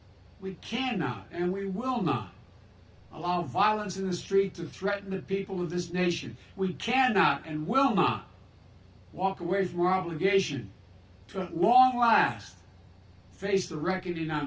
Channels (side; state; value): both; identical; correlation 1.00